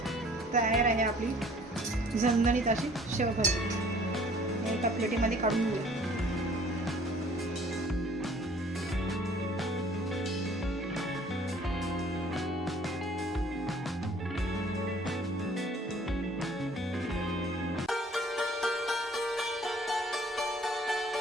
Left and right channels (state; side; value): normal; both; correlation 0.55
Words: तयार आहे आपली झणझणीत अशी शेवभाजी. एका प्लेटीमध्ये काढून घेऊया.